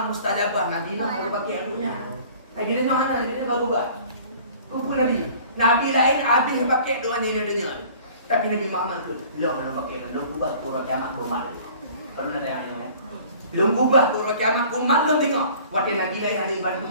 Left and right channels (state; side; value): inverted; both; correlation -0.49